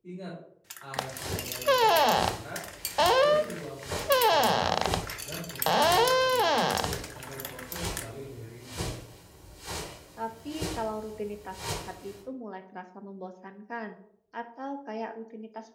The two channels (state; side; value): identical; both; correlation 1.00